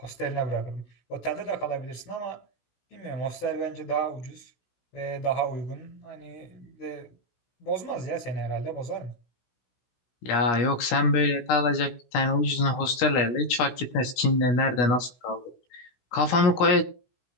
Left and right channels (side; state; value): right; late; 16 ms